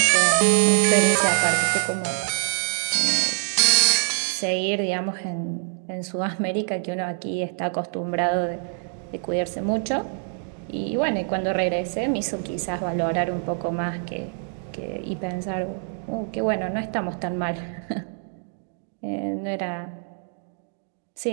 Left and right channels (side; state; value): left; silent; 57 dB below the other